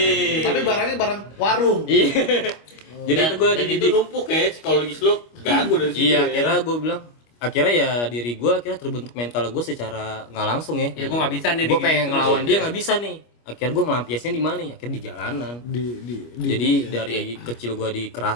Tapi barangnya barang warung. Iya. Jadi itu gue dan itu dididik. numpuk ya, psikologis lu ganggu dari situ. Iya, ya. akhirnya gue bilang, akhirnya ya diri gue akhirnya terbentuk mental gue secara nggak langsung ya. Ya gue nggak bisa nih. Gue pengen digigit ngelawan terus. dia nggak bisa nih. Akhirnya gue ngelampiasnya di mana ya? Akhirnya di jalanan. Jadi dari kecil gue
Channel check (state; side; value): late; right; 25 ms